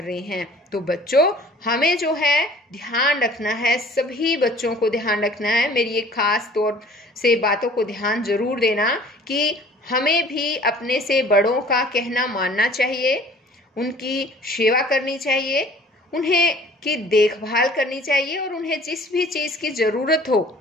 रहे हैं। तो बच्चों हमें जो है ध्यान रखना है, सभी बच्चों को ध्यान रखना है। मेरी एक खास तौर से बातों को ध्यान जरूर देना कि हमें भी अपने से बड़ों का कहना मानना चाहिए, उनकी सेवा करनी चाहिए, उन्हें की देखभाल करनी चाहिए और उन्हें जिस भी चीज की जरूरत हो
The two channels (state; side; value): normal; both; correlation 0.50